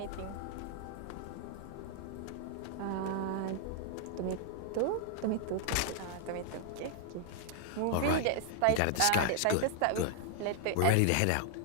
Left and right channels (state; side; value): different; both; correlation 0.00